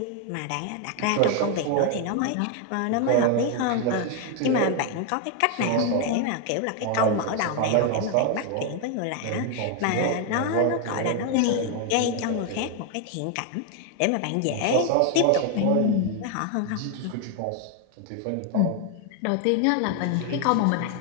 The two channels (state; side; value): different; both; correlation 0.01